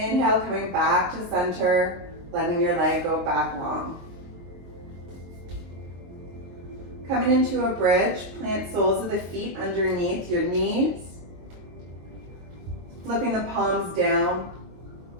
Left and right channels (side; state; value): left; late; 22 ms